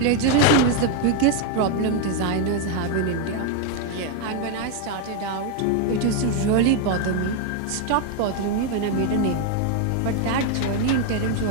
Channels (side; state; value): both; different; correlation 0.01